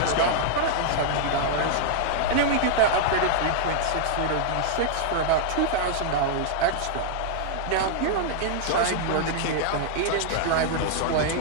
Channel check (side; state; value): both; different; correlation -0.01